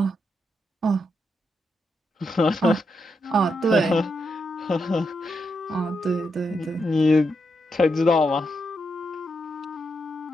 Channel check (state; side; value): normal; both; correlation 0.83